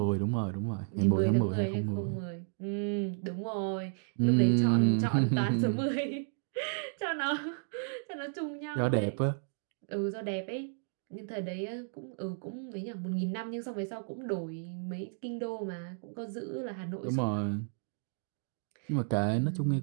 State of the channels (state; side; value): silent; left; digital silence